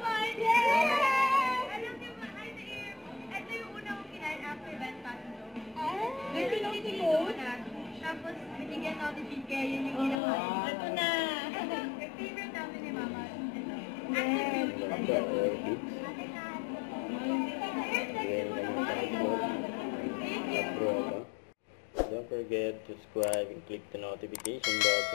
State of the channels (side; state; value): right; drops out; at 10.2 s